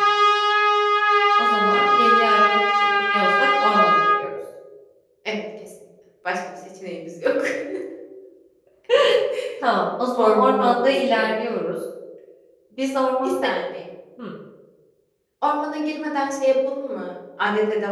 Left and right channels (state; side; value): identical; both; correlation 1.00